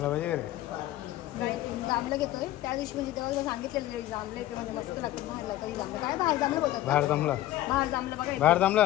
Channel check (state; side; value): quieter; right; 14.7 dB